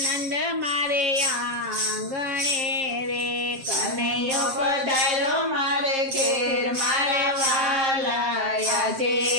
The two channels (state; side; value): late; left; 7.5 ms